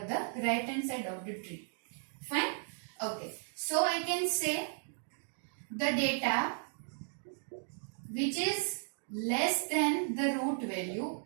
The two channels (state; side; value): silent; left; digital silence